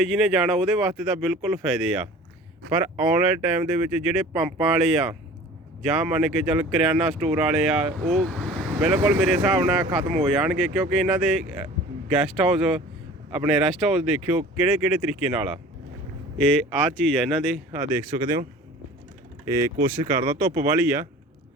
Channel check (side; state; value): both; normal; correlation 0.43